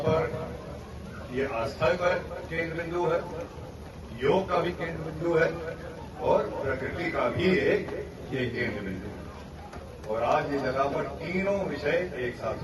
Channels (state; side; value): identical; both; correlation 1.00